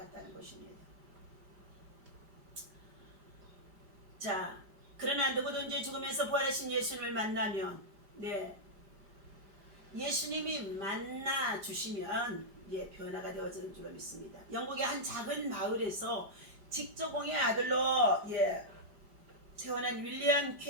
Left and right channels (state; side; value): late; left; 5.0 ms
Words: 것입니다. 자, 그러나 누구든지 죽으면서 부활하신 예수님을 만나면 예수님이 만나 주시면 변화가 되어지는 줄로 믿습니다. 영국의 한 작은 마을에서 직조공의 아들로 태어난 윌리엄